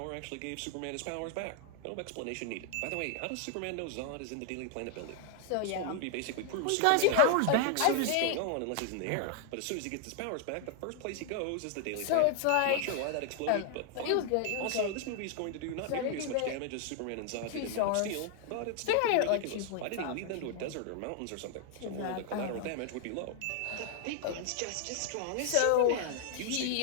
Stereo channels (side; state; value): both; different; correlation 0.00